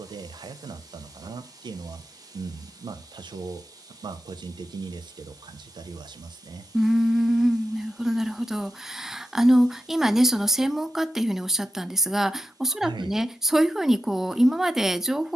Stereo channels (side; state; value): both; normal; correlation 0.88